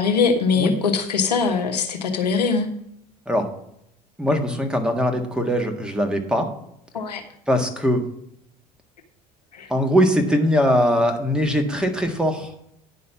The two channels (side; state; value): both; normal; correlation 0.59